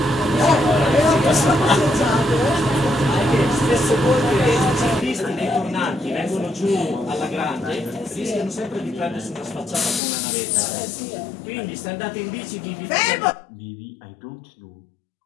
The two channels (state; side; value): drops out; right; at 10.0 s